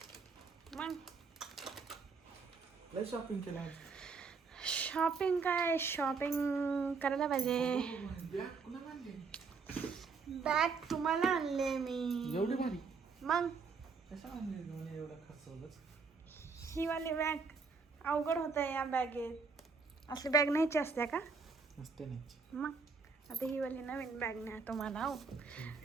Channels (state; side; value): quieter; left; 4.9 dB